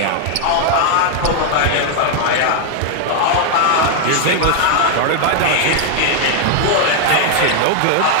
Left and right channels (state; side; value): different; both; correlation 0.00